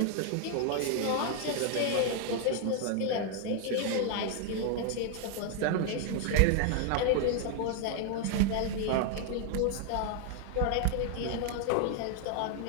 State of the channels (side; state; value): both; different; correlation 0.00